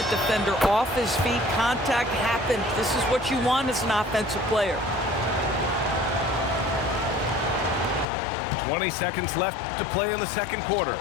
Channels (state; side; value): drops out; right; at 8.1 s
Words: defender off his feet. Contact happened. This is what you want as an offensive player. 20 seconds left to play in the second quarter.